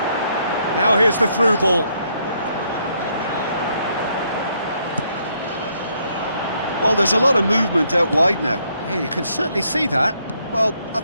Now here's the through ball. Well, there's a lot of movement out wide now. Yeah, you can certainly see that. Well, I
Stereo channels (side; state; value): both; inverted; correlation -0.72